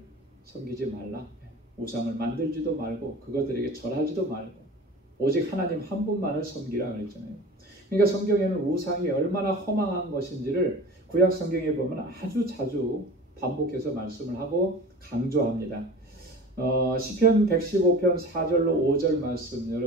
섬기지 말라. 우상을 만들지도 말고 그것들에게 절하지도 말고 오직 하나님 한 분만을 섬기라 그랬잖아요. 그러니까 성경에는 우상이 얼마나 허망한 것인지를 구약 성경에 보면 아주 자주 반복해서 말씀을 하고 강조합니다. 시편 115편 4절로 5절 말씀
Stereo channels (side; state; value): both; normal; correlation 0.38